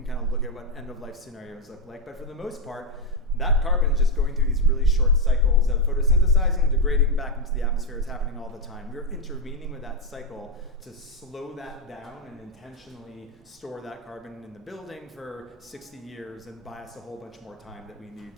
kind of look at what end of life scenarios look like, but for the most part, that carbon is just going through these really short cycles of photosynthesizing, degrading back into the atmosphere. It's happening all the time. We're intervening with that cycle to slow that down and intentionally store that carbon in the building for 60 years and buy us a whole bunch more time that we need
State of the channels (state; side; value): normal; both; correlation 0.04